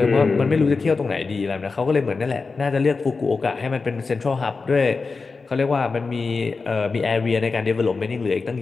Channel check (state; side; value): quieter; right; 4.3 dB